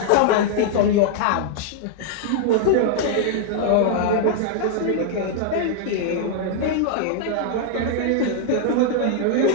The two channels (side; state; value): both; different; correlation -0.01